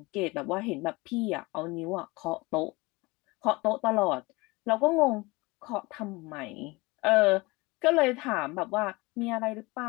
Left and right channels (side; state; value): right; quieter; 23.7 dB